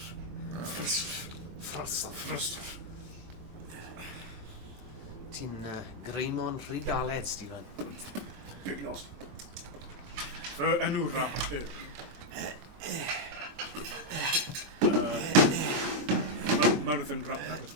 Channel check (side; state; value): left; late; 23 ms